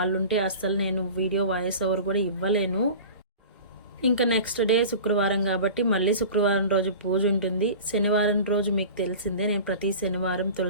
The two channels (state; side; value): inverted; both; correlation -0.37